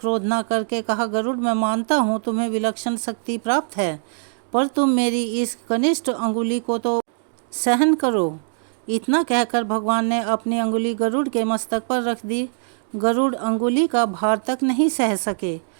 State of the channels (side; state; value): left; silent; digital silence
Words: न करके कहा, गरुड़, मैं मानता हूँ तुम्हें विलक्षण शक्ति प्राप्त है, पर तुम मेरी इस कनिष्ठ अंगुली को तो सहन करो। इतना कहकर भगवान ने अपनी अंगुली गरुड़ के मस्तक पर रख दी। गरुड़ अंगुली का भार तक नहीं सह सके।